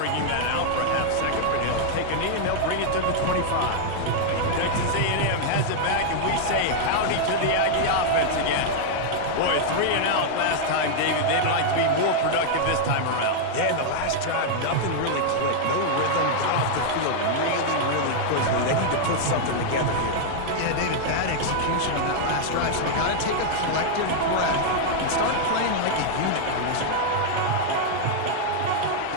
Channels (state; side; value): different; both; correlation -0.01